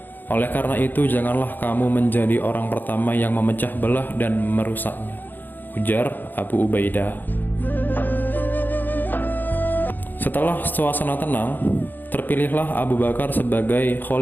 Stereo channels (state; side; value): late; right; 0.089 ms